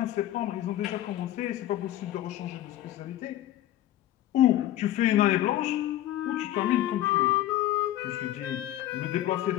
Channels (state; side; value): quieter; right; 13.6 dB